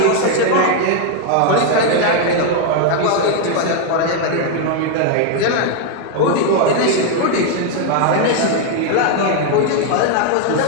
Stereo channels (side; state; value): both; different; correlation 0.00